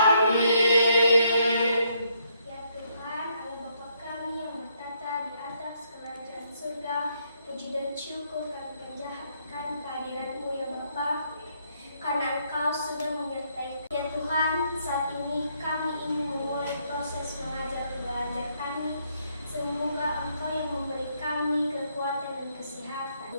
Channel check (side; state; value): both; inverted; correlation -0.73